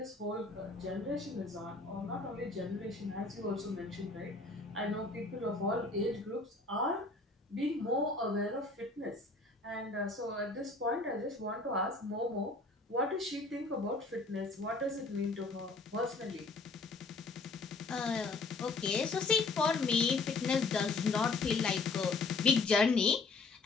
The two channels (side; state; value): right; quieter; 3.6 dB